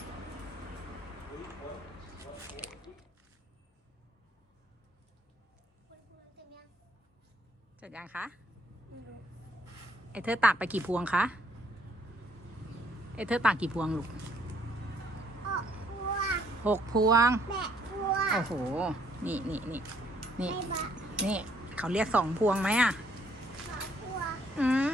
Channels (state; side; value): normal; both; correlation 0.66